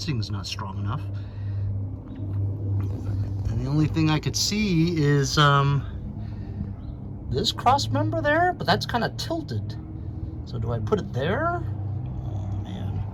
not strong enough. And the only thing I could see is this cross member there, but that's kind of tilted. So do I put it there? Oh man,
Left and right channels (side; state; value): both; identical; correlation 1.00